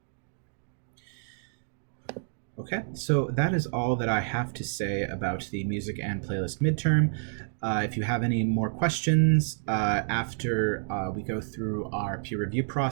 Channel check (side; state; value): left; silent; digital silence